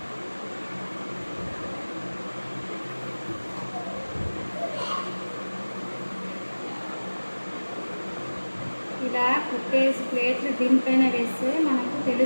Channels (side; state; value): both; inverted; correlation -1.00